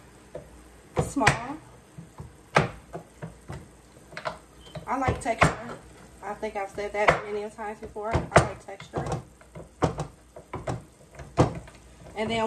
small. I like texture. I think I've said that many times before. I like texture. And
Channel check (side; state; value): both; identical; correlation 1.00